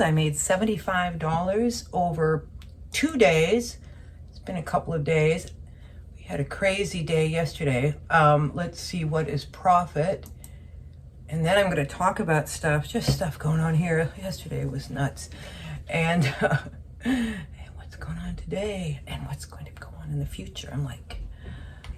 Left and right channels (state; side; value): identical; both; correlation 1.00